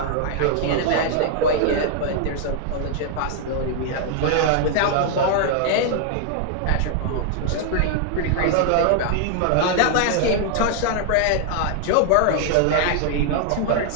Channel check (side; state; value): both; different; correlation -0.01